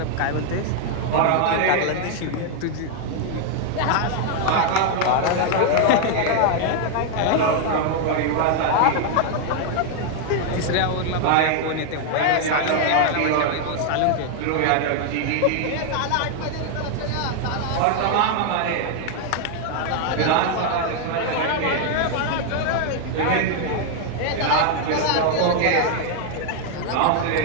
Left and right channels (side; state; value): both; different; correlation 0.00